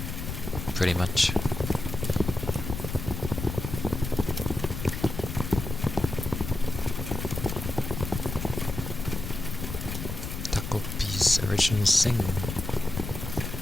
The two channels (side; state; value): left; noise; rumble, 6 dB below the sound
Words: Pretty much. Original sing.